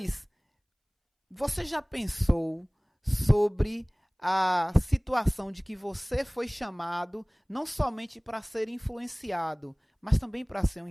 você já pensou sobre a situação de que você foi chamado não somente para ser influenciado, mas também para ser um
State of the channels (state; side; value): identical; both; correlation 1.00